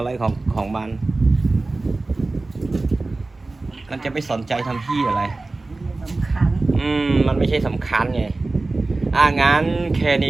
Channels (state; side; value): quieter; left; 3.3 dB